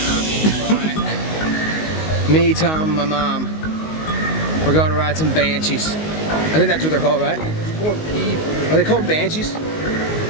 Me, Tom, my mom. We're going to ride some Banshees. I think that's what they're called, right? Are they called Banshees?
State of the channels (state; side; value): late; right; 19 ms